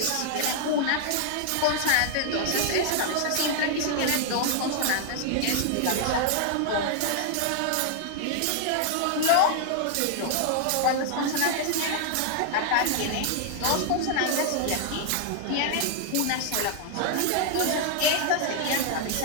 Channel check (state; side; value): different; both; correlation 0.00